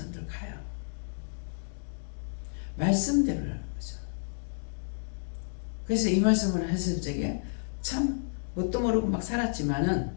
가요. 말씀대로라는 거죠. 그래서 이 말씀을 했을 적에 참 뭣도 모르고 막 살았지만은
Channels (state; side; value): silent; right; digital silence